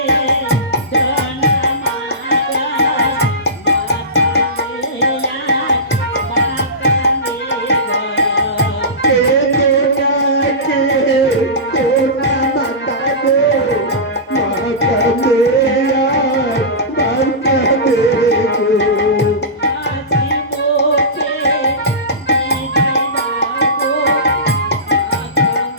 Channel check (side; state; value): both; normal; correlation -0.20